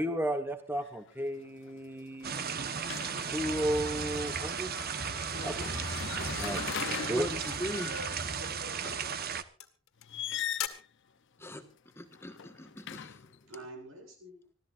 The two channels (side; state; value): both; normal; correlation 0.47